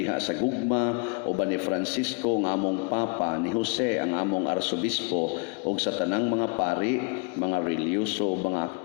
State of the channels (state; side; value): quieter; right; 34.2 dB